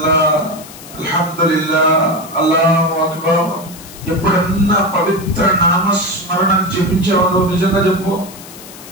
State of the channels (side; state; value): left; noise; hiss, 17 dB below the sound